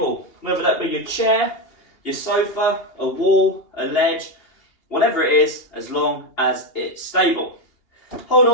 whether that be your chair, your sofa, a wall, a ledge, whatever it is, as long as it's stable. Hold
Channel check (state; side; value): late; right; 2.8 ms